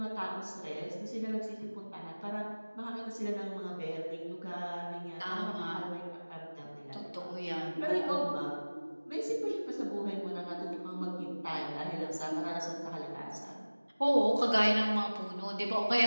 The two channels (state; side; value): inverted; both; correlation -1.00